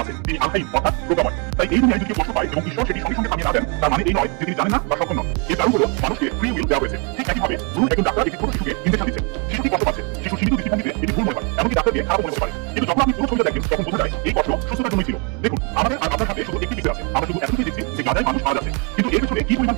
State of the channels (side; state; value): left; quieter; 34.9 dB